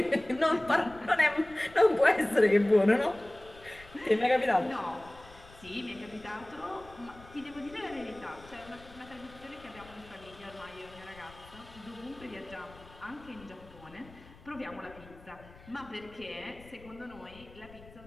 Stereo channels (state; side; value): noise; left; rumble, 21 dB below the sound